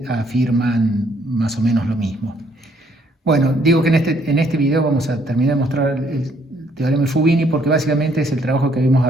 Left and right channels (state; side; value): normal; both; correlation 0.67